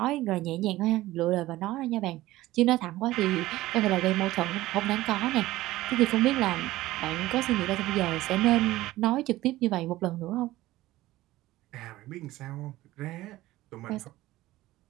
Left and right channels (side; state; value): left; quieter; 16.8 dB